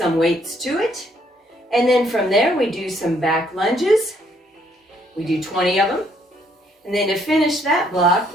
weights to it. And then from there, we do some back lunges. We do 20 of them. And then to finish that block,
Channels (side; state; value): both; normal; correlation 0.68